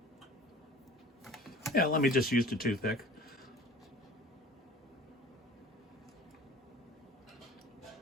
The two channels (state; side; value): normal; both; correlation 0.44